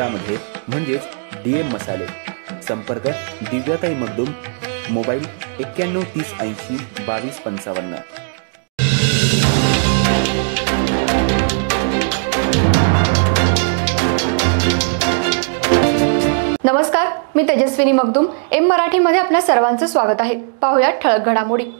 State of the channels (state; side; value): silent; left; digital silence